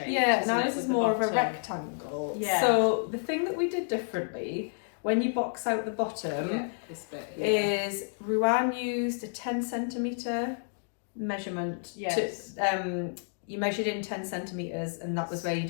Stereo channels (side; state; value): right; silent; digital silence